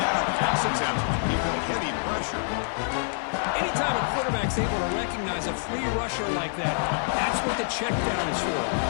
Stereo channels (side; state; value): right; silent; 59 dB below the other